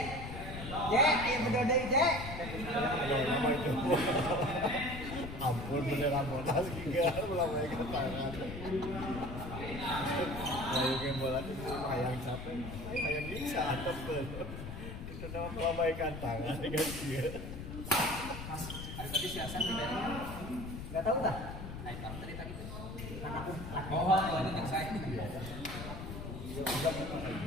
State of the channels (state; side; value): noise; left; rumble, 8 dB below the sound